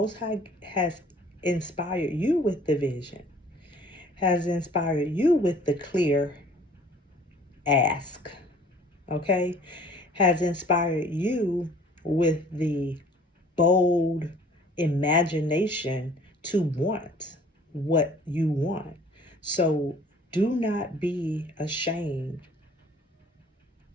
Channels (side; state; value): both; normal; correlation 0.52